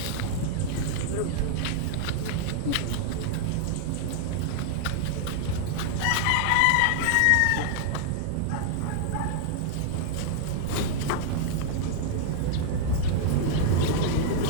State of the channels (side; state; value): both; different; correlation -0.01